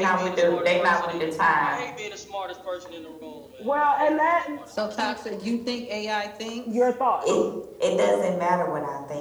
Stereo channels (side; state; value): both; identical; correlation 1.00